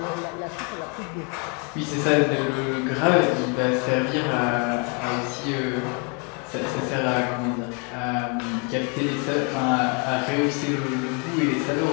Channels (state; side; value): quieter; right; 35.5 dB